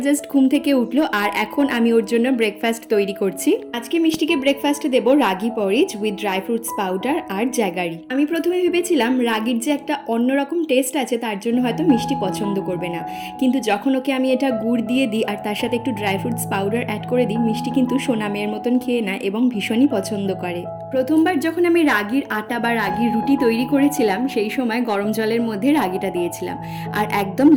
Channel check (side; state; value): both; identical; correlation 1.00